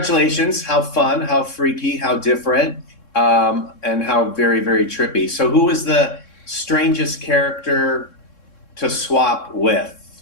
how fun, how freaky, how different, and how very, very trippy. So who was the strangest character to swap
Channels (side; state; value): right; late; 3.6 ms